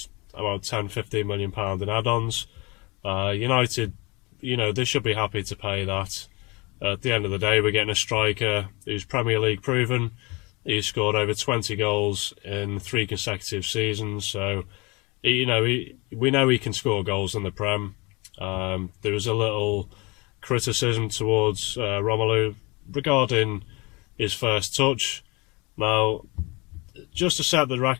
about 10-15 million pound in add-ons. United, they should be happy to pay that. At the end of the day, we're getting a striker who's Premier League proven. He's scored over 20 goals in 3 consecutive seasons, so we know he can score goals in the Prem. There was a little criticism towards Romelu regarding his first touch. Now, just to set the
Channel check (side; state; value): right; quieter; 26.4 dB